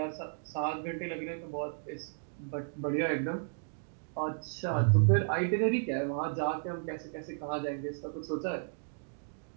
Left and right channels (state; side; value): silent; left; digital silence